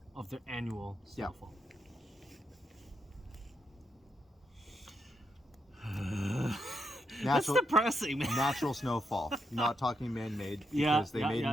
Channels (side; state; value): both; normal; correlation 0.80